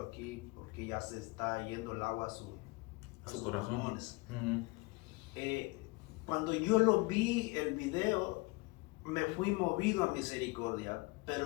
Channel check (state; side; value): quieter; right; 25.1 dB